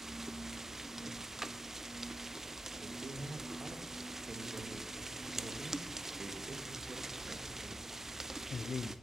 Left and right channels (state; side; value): normal; both; correlation 0.86